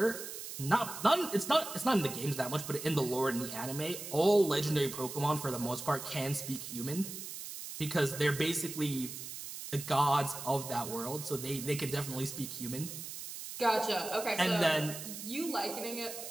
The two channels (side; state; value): right; noise; hiss, 9 dB below the sound